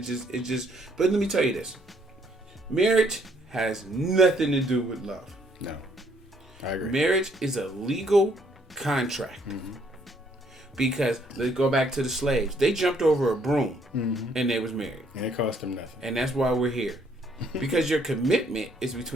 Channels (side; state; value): both; normal; correlation 0.67